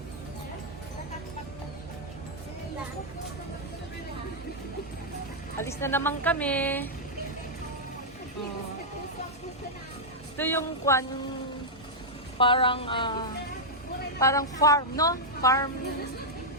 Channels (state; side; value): normal; both; correlation -0.07